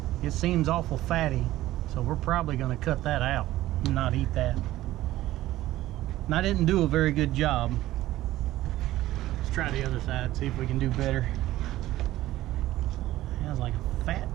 it seems awful fatty, so we're probably going to cut that out and not eat that. And I didn't do a very good job. Let's try the other side, see if we can do better. There's like a fat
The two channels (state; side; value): quieter; left; 15.4 dB